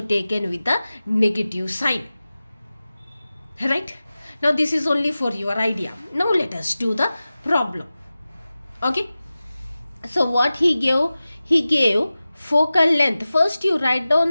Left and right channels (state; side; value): inverted; both; correlation -0.96